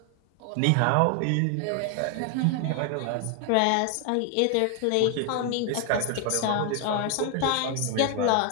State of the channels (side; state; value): both; different; correlation 0.00